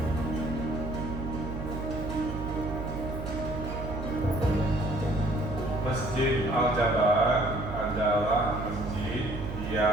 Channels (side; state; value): right; noise; hum, 6 dB below the sound